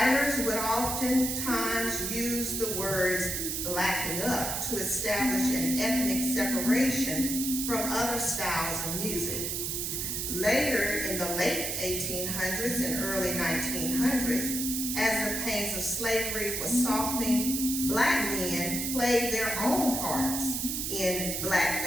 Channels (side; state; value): right; noise; hiss, 2 dB below the sound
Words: would oftentimes use the words blacking up to establish an ethnic separation from other styles of music. Later, in the late 1800s and early 1900s, as the pains of slavery was softening, black men played their own parts in